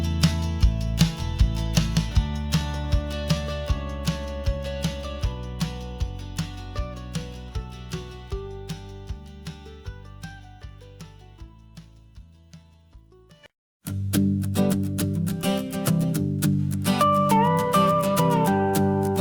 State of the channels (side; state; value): both; identical; correlation 1.00